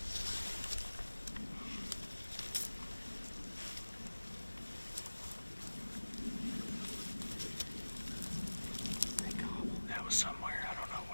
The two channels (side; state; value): both; inverted; correlation -1.00